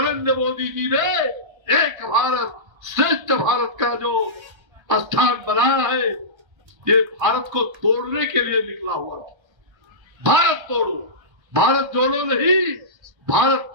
मोदी जी ने एक भारत श्रेष्ठ भारत का जो स्थान बनाया है, ये भारत को तोड़ने के लिए निकला हुआ था। भारत तोड़ो, भारत जोड़ो नहीं, भारत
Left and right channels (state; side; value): late; left; 1.3 ms